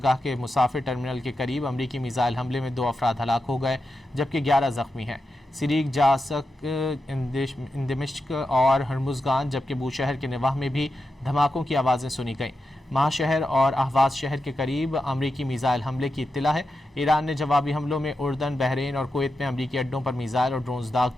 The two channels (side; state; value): both; normal; correlation 0.89